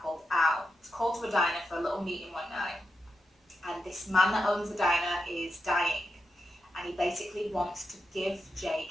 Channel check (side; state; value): both; normal; correlation 0.87